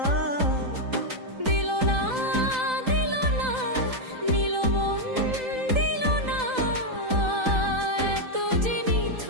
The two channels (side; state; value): left; late; 3.9 ms